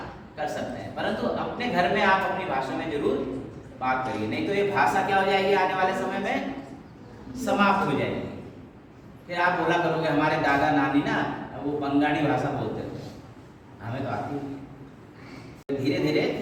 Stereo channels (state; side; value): identical; both; correlation 1.00